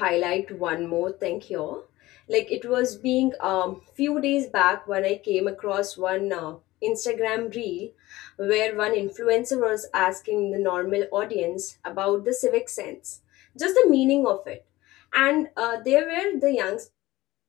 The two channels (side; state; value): right; quieter; 18.1 dB